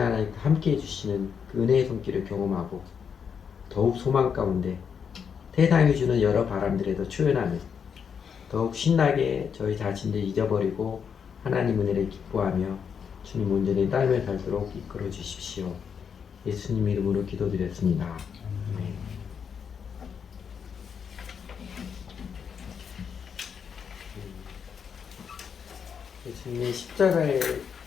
함께 해주시는 그 은혜의 손길을 경험하고 더욱 소망 가운데 세상이 주는 여러 바람들에도 초연하며 더욱 신나게 저희 자신을 잊어버리고 하나님 은혜를 기뻐하며 주님 온전히 따르며 살도록 이끌어 주십시오. 예수님 이름으로 기도드렸습니다. 아멘. 예수님의 십자가의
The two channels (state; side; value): quieter; right; 7.0 dB